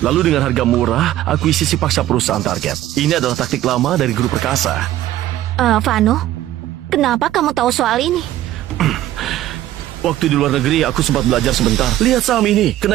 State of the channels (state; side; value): quieter; left; 13.7 dB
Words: Lalu dengan harga murah, akuisisi paksa perusahaan target. Ini adalah taktik lama dari grup perkasa. Vano, kenapa kamu tahu soal ini? Waktu di luar negeri, aku sempat belajar sebentar. Lihat saham ini,